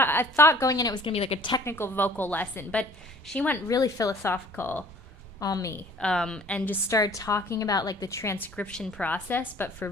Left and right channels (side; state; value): both; normal; correlation 0.51